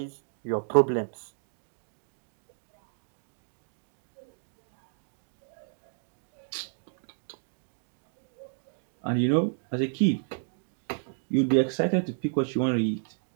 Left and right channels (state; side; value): silent; left; digital silence